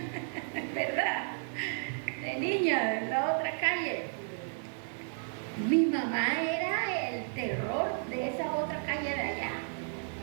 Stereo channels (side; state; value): left; silent; digital silence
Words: ¿verdad? De niña, de la otra calle. Mi mamá era el terror de esa otra calle de allá.